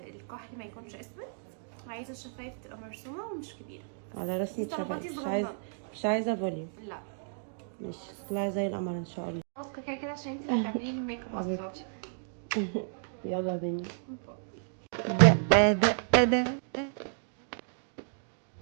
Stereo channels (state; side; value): silent; left; digital silence